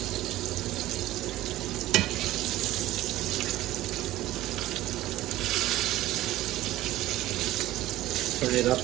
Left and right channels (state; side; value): quieter; left; 15.7 dB